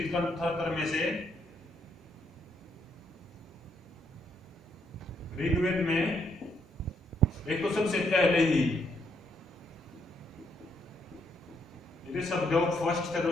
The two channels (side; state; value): both; normal; correlation 0.74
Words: में से ऋग्वेद में एक तो सबसे पहले ही ऋषभदेव फर्स्ट थे